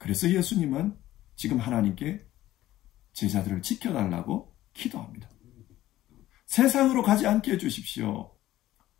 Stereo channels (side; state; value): right; quieter; 14.7 dB